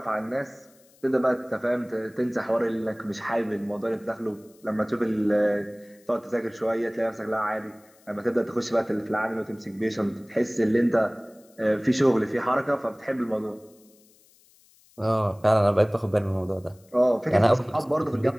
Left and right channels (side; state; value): left; noise; hiss, 30 dB below the sound